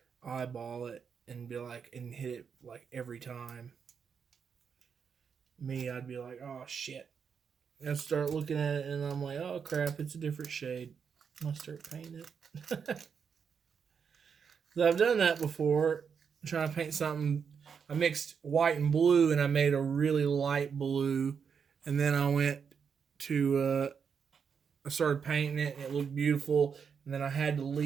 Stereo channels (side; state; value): left; quieter; 6.6 dB